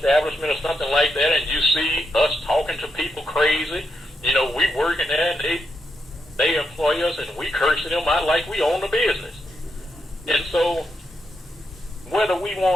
or something like that and you see us talking to people crazy. You know, we working there and they employ us and we cursing them out like we own the business. And so whether we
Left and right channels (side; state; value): both; normal; correlation 0.83